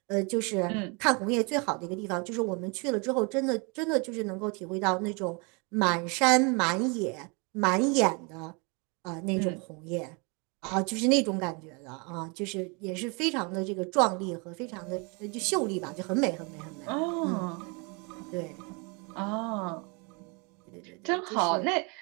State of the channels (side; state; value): left; quieter; 31.6 dB